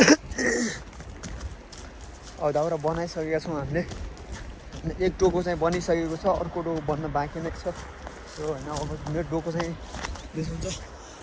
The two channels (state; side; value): identical; both; correlation 1.00